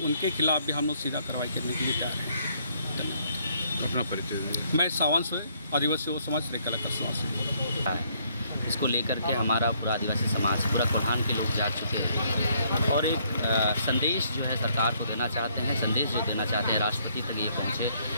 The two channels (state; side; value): inverted; both; correlation -0.68